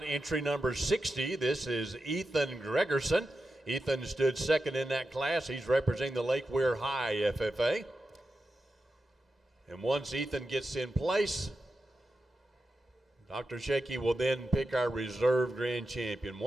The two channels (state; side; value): normal; both; correlation 0.90